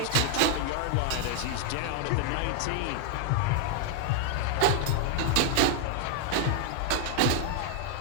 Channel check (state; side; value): different; both; correlation 0.00